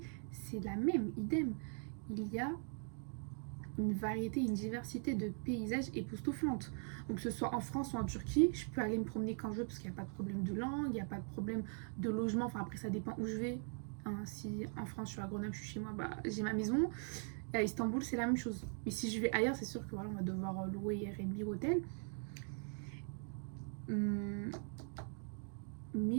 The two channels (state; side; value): silent; left; 50 dB below the other